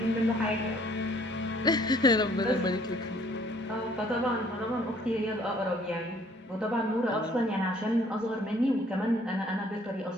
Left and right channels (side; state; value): both; normal; correlation 0.60